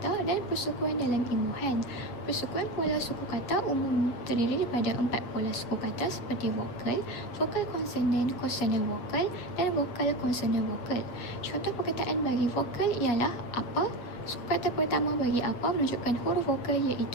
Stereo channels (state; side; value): late; right; 7.9 ms